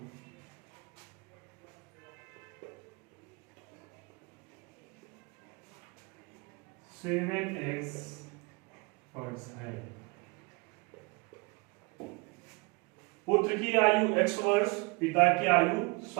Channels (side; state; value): left; quieter; 28.3 dB